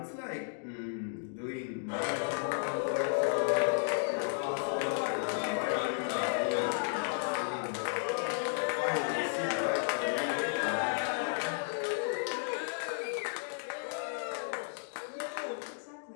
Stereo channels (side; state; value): right; silent; digital silence